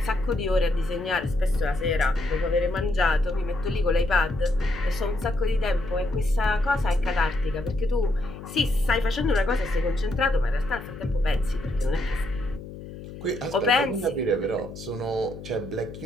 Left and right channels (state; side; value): noise; left; hum, 13 dB below the sound